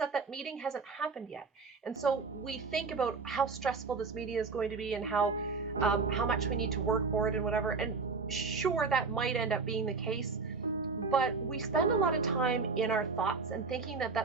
that meeting hasn't happened yet. And so we think about how stressful this meeting is going to be and how much we need to work for it and whatever. And sure, that might end up being the case. But we spend a lot of time in our thoughts and thinking that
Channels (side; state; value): left; quieter; 4.6 dB